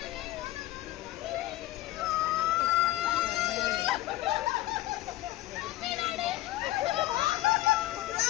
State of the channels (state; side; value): quieter; right; 16.3 dB